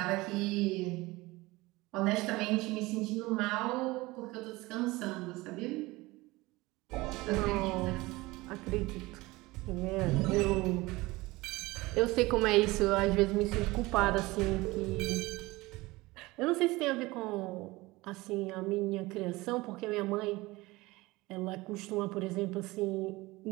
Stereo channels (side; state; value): left; quieter; 21.1 dB